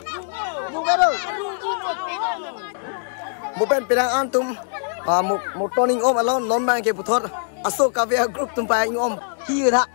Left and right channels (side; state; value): right; silent; 64 dB below the other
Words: Bukan pirang antum. Một toning om alon non bang ke puthor asok kavya group tumpai om hi tha.